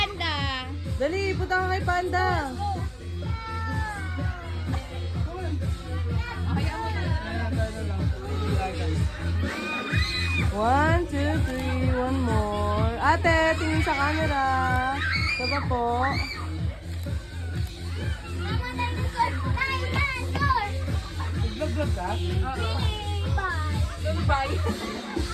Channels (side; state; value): both; identical; correlation 1.00